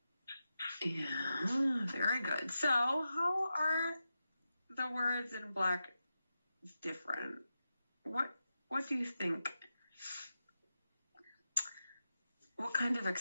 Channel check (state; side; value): inverted; both; correlation -0.90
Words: Yeah, very good. So how are the words in black different? What do you think? What kind of